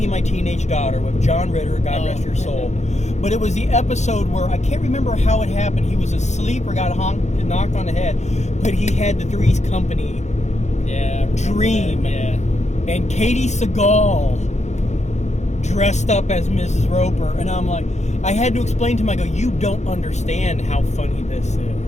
My Teenage Daughter with John Ritter, God rest your soul. But it was the episode where, I can't remember how it happened. He was asleep or got knocked on the head, but he had the Three's Company dream. Yeah. And Katie Seagal dressed up as Mrs. Roper. And I'm like, I had to explain to him, I go, "You don't understand how funny this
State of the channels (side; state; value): right; late; 0.33 ms